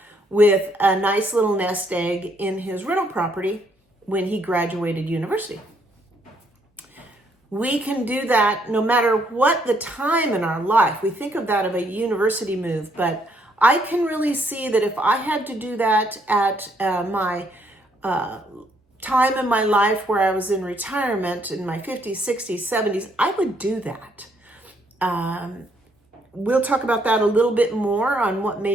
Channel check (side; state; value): both; normal; correlation 0.70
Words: with a nice little nest egg in his rental property when he graduated university. We can do that no matter what the time in our life. We think of that of a university move, but I can really see that if I had to do that at my time in my life where I was in retirement in my 50s, 60s, 70s, I would do that. We'll talk about that a little bit more on what